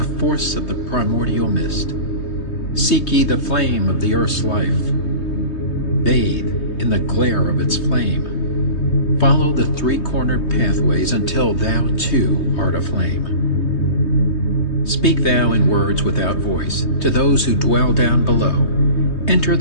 force of the primordial mist. Seek ye the flame of the earth's life. Bathe in the glare of its flame. Follow the three-cornered pathways until thou too art aflame. Speak thou in words without voice to those who dwell down below. Enter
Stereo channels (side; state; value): right; late; 3.2 ms